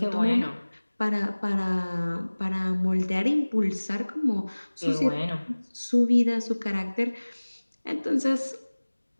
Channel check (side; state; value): both; inverted; correlation -1.00